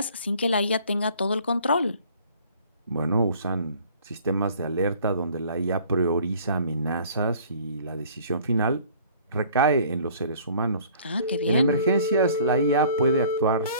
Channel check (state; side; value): inverted; both; correlation -0.52